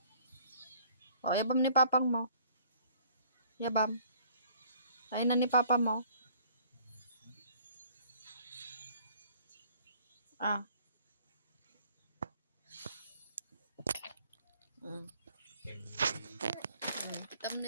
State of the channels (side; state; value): both; inverted; correlation -0.57